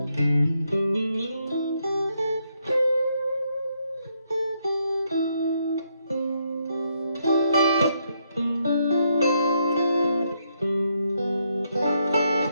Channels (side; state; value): both; inverted; correlation -0.77